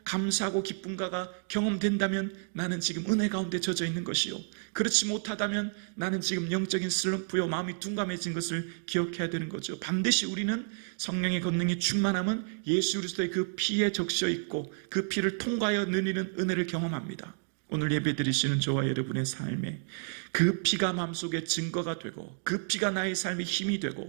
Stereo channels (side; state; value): left; silent; 57 dB below the other